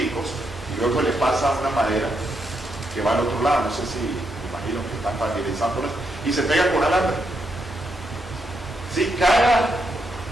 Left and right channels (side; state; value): both; normal; correlation 0.80